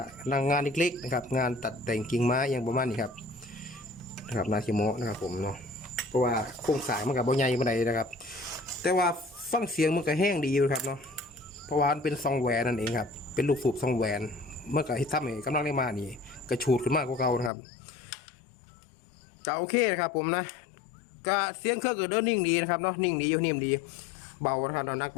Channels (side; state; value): right; drops out; at 17.5 s